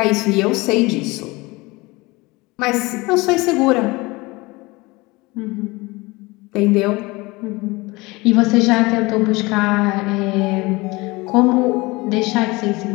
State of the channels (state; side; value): quieter; right; 23.1 dB